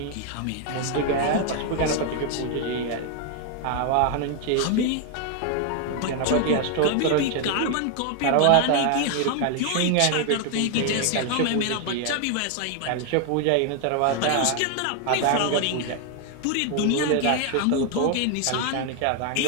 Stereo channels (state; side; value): different; both; correlation 0.01